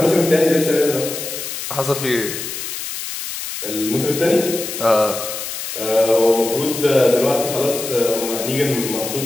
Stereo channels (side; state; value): left; noise; hiss, 7 dB below the sound